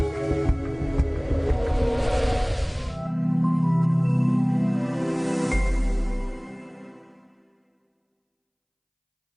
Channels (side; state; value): both; identical; correlation 1.00